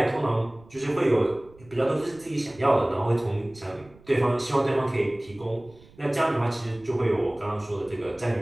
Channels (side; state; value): right; noise; rumble, 25 dB below the sound